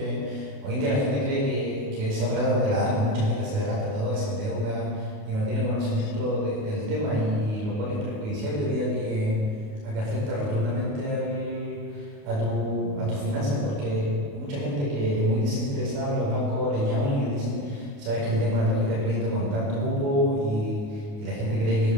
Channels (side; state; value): left; late; 28 ms